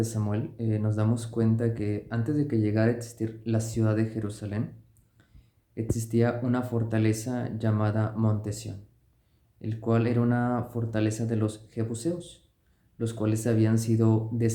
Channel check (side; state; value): both; identical; correlation 1.00